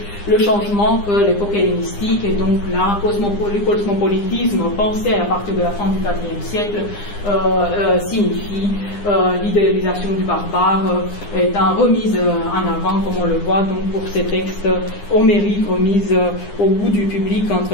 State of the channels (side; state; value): right; late; 9.8 ms